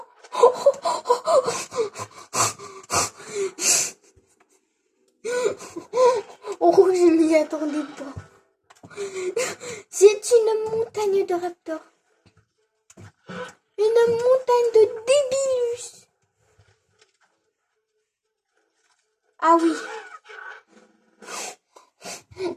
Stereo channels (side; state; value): both; identical; correlation 1.00